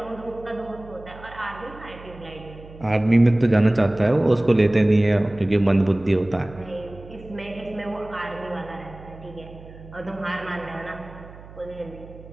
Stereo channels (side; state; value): right; noise; hum, 18 dB below the sound